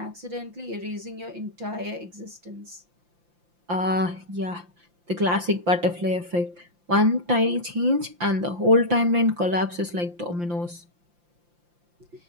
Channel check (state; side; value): late; left; 5.8 ms